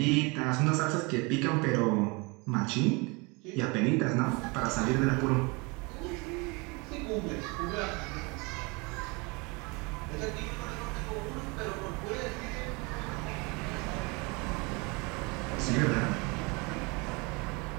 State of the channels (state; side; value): quieter; left; 28.4 dB